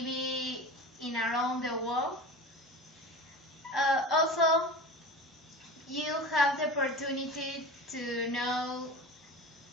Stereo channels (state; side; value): normal; both; correlation 0.32